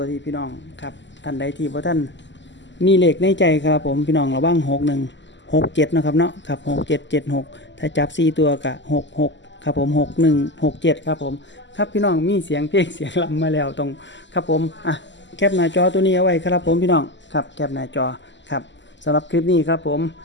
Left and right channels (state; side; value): late; right; 0.53 ms